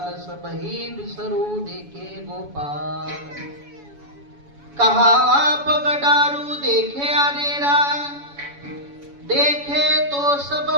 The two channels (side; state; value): left; late; 7.1 ms